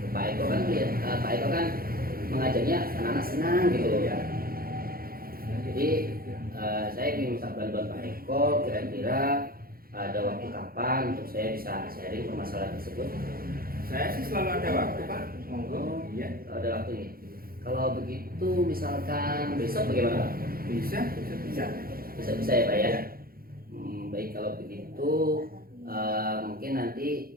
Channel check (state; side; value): late; left; 0.43 ms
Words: Pak Eko kan mengajarnya anak-anak senang gitu loh. Jadi saya ingin minta bantuan Pak Eko, kira-kira ada waktu kapan untuk saya bisa sharing permasalahan tersebut? Saya sih selalu ada waktu Pak, monggo. Iya. Ada waktu nih. Kalau begitu misalkan besok bagaimana Pak? Bisa ya Pak ya. Baik, kalau begitu mungkin